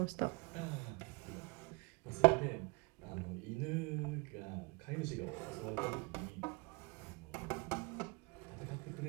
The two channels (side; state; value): left; quieter; 27.8 dB